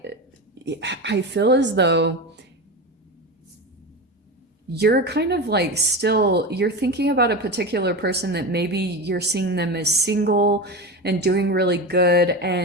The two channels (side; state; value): both; normal; correlation 0.22